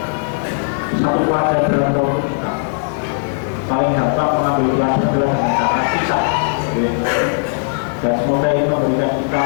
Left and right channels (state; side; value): silent; right; 60 dB below the other